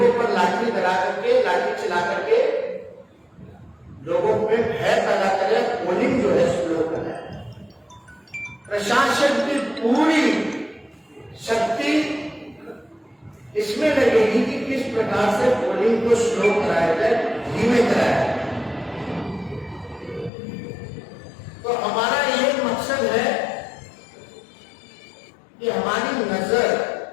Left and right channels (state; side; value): drops out; right; at 20.3 s